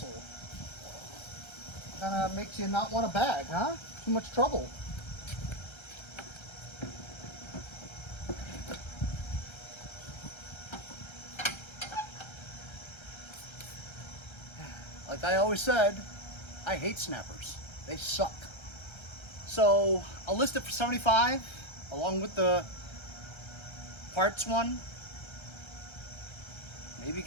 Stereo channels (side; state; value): right; late; 1.3 ms